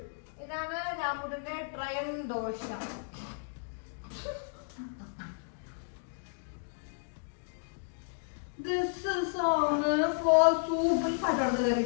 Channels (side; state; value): right; silent; digital silence